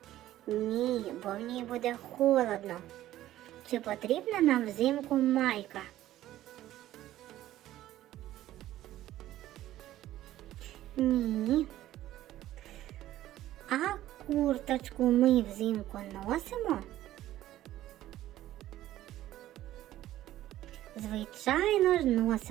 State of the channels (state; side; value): quieter; left; 14.0 dB